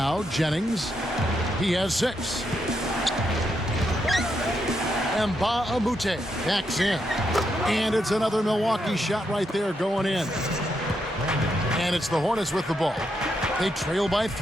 Jennings. He has 6. Mbah-a-Moute backs in. And it's another Milwaukee shot right there going in. And it's the Hornets with the ball. They trail by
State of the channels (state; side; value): normal; both; correlation 0.81